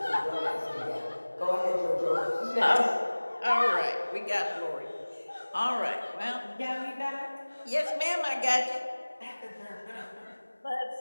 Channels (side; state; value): both; inverted; correlation -1.00